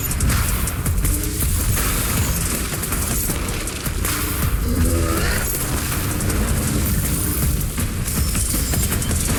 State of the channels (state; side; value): identical; both; correlation 1.00